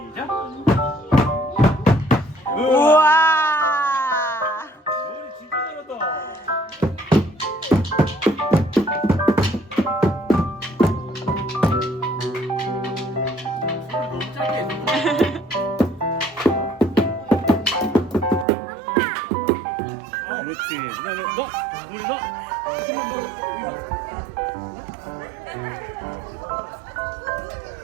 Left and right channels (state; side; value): drops out; left; at 18.4 s